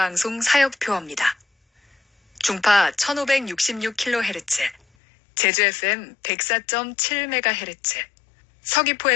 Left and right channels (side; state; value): right; drops out; at 4.8 s